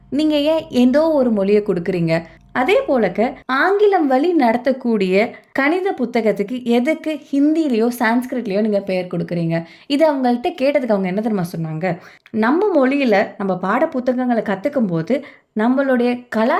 நீங்கள் ஏன் ஏதோ ஒரு மொழியை கொடுக்குறீங்க? அதே போலக்க ஆங்கிலம் வழி நடத்தக்கூடிய கணித புத்தகத்துக்கு எதுக்கு ஹிந்திலேயோ சான்ஸ்கிரிட்லேயோ நீங்கள் பெயர் கொடுக்குறீங்க? இதை அவங்கள்ட்ட கேட்டதுக்கு அவங்க என்ன தெரியுமா சொன்னாங்க? நம்ம மொழியில் நம்ம பாட புத்தகங்களை கற்றுக்கும் போது நம்மளுடைய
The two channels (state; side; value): identical; both; correlation 1.00